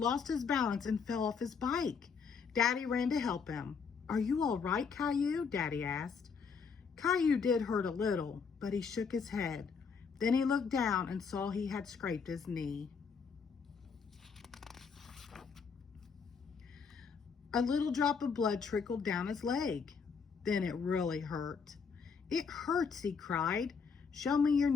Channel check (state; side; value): quieter; right; 5.8 dB